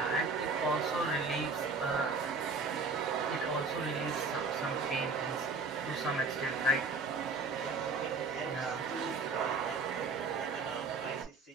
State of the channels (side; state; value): left; quieter; 4.2 dB